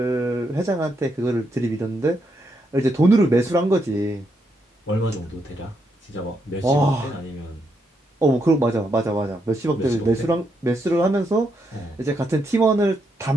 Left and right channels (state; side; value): normal; both; correlation 0.79